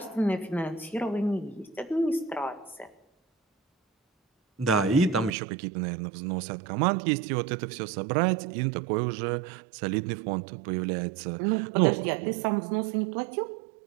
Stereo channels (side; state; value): left; drops out; at 5.3 s